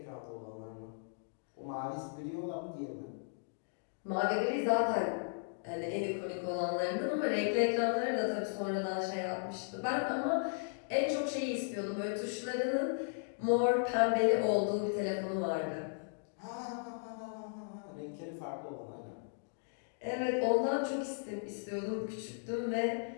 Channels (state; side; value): silent; right; digital silence